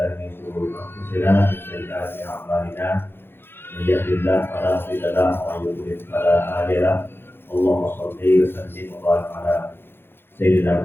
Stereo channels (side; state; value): right; late; 0.11 ms